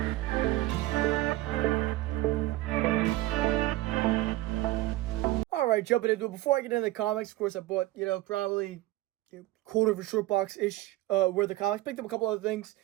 Alright, jumping into it. Before I get into the comics, of course, I bought, probably quarter of a short box-ish worth of comics. Picked up a couple other things.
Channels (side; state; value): left; quieter; 17.7 dB